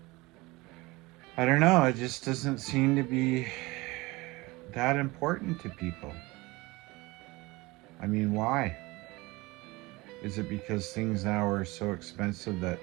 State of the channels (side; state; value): left; quieter; 22.4 dB